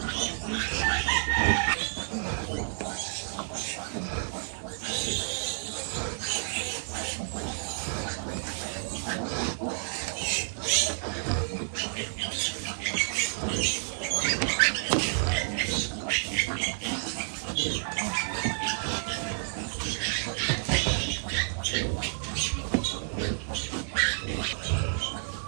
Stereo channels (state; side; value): silent; left; digital silence